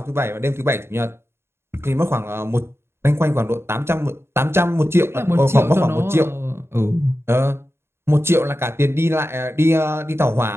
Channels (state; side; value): late; left; 0.12 ms